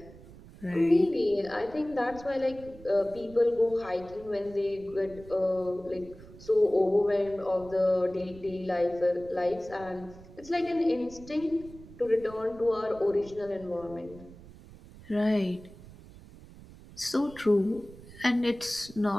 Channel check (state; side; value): noise; right; rumble, 19 dB below the sound